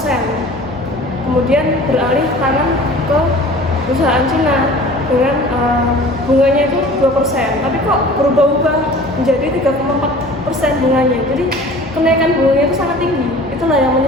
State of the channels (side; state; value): both; normal; correlation 0.44